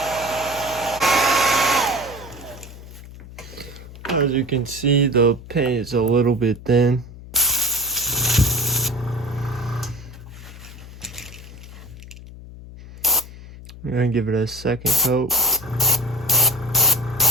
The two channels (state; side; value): noise; left; hum, 16 dB below the sound